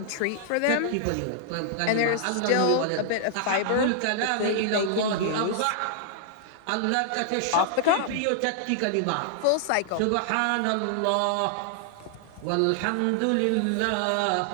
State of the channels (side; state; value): both; different; correlation -0.01